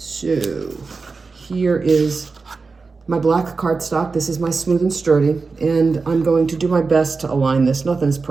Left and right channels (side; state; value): left; quieter; 4.3 dB